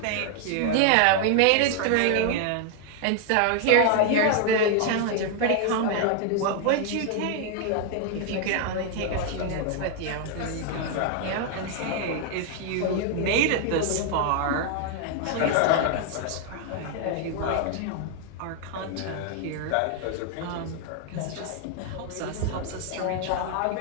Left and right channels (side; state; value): both; different; correlation 0.00